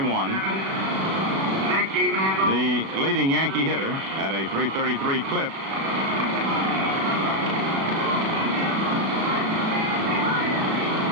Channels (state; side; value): late; left; 36 ms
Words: The leading Yankee hitter at a .333 clip.